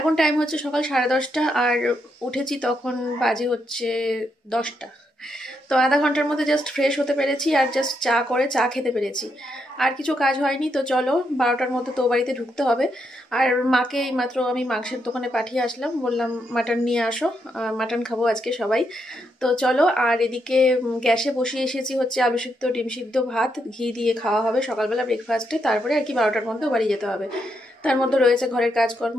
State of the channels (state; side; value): normal; both; correlation 0.80